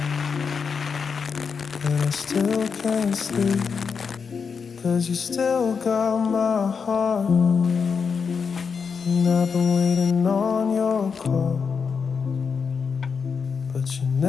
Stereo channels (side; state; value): right; quieter; 5.8 dB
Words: and I still can't sleep, 'cause you still got my heart, and I've been waiting on your call, but you